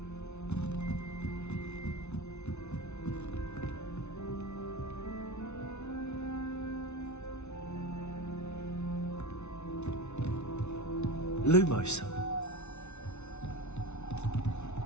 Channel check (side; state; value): right; late; 0.81 ms